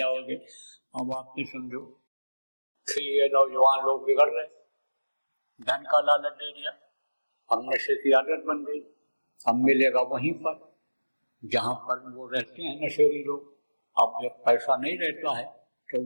अब आप ये समझो कि ये नौजवान लोग बिगड़ रहे, धन का लालच दे दिया, अब नशे की आदत बन गई, अब मिलेगा वहीं पर जहां पर वो रहते हैं नशेड़ी लोग। अब जब पैसा नहीं रहता है तो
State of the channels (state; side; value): inverted; both; correlation -1.00